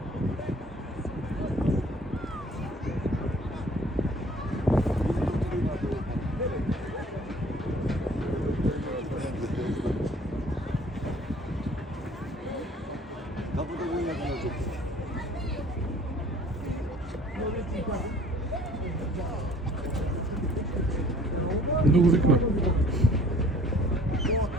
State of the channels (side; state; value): both; normal; correlation 0.53